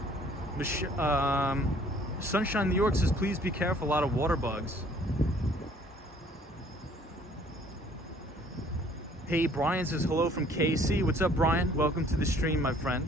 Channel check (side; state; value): both; normal; correlation 0.57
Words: Sunshine New York says, please be careful, a lot of water bugs. Hey, Brian says, hello from KC. What's up, Brian? Welcome to the stream, my